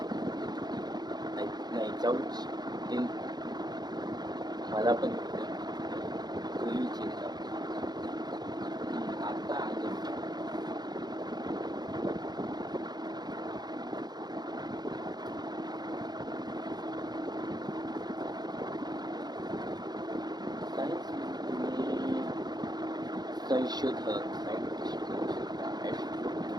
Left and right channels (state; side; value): late; left; 0.20 ms